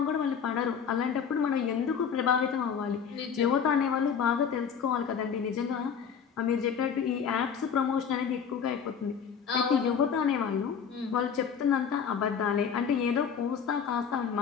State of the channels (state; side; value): quieter; right; 7.1 dB